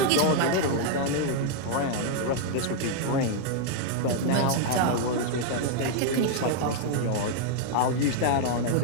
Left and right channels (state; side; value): different; both; correlation -0.01